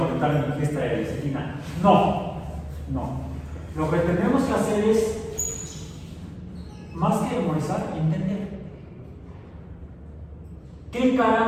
en mi fiesta de lecitina. No. Lo que tenemos que hacer es, más que memorizar, entender. ¿Qué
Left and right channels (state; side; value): identical; both; correlation 1.00